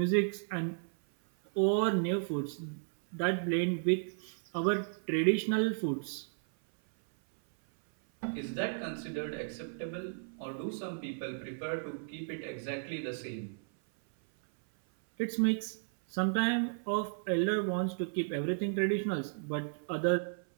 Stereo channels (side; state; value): left; silent; 55 dB below the other